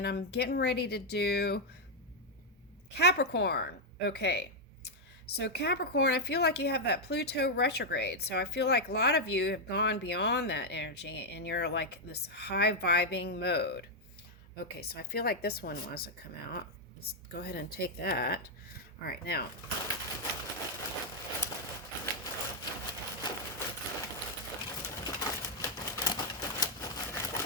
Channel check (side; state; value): both; normal; correlation -0.02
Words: I'm getting ready to do Capricorn. Okay. So Capricorn, I feel like you have that Pluto retrograde. So I feel like a lot of you have gone beyond that energy and you're like this high vibing mode. Okay, so I feel like this one wants to come out. Let's go ahead and take that. All right, now